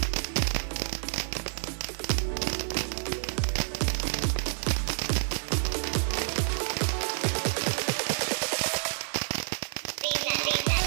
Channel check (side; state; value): left; silent; digital silence